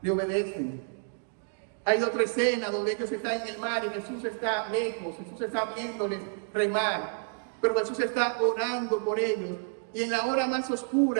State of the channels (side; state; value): left; silent; digital silence